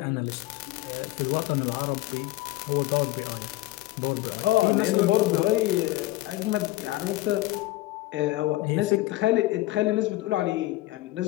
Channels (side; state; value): right; quieter; 17.6 dB